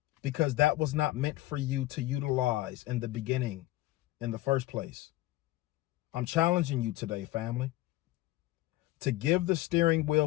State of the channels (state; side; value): quieter; right; 16.9 dB